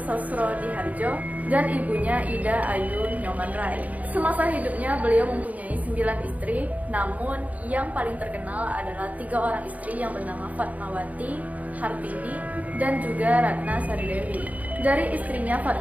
dan ibunya Ida Ayu Nyoman-Rai. Semasa hidupnya beliau mempunyai 9 istri, namun yang paling terkenal adalah 3 orang istri yang bernama Fatmawati, Hartini, dan juga Ratna Sari Dewi. Dari istrinya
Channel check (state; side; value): late; left; 0.072 ms